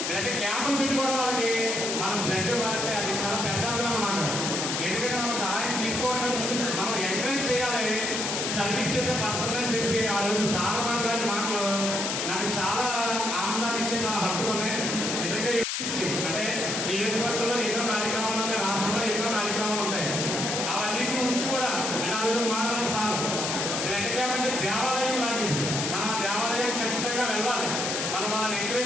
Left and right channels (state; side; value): noise; left; hiss, 1 dB below the sound